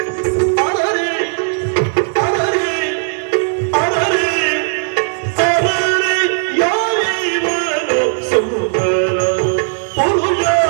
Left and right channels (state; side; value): silent; left; 66 dB below the other